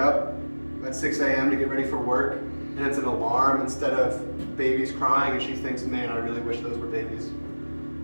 at 6 a.m. to get ready for work, and it's an alarm instead of babies crying, and she thinks, man, I really wish those were babies?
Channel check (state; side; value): inverted; both; correlation -1.00